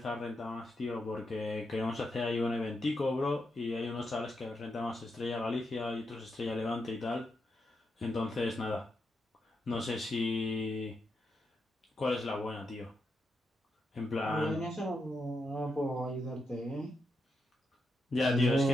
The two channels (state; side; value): normal; both; correlation 0.84